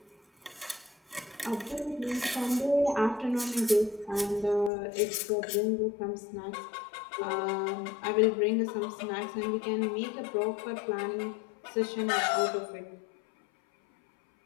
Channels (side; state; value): right; drops out; at 4.7 s